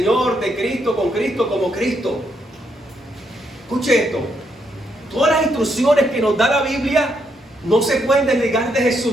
de Cristo, con Cristo, como Cristo. Escuche esto. Todas las instrucciones que nos da la Biblia no se pueden desligar de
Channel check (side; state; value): both; normal; correlation 0.77